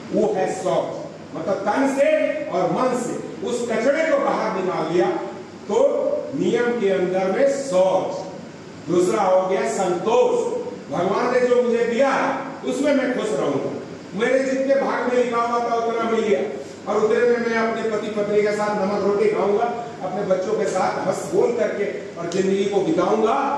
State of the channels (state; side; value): identical; both; correlation 1.00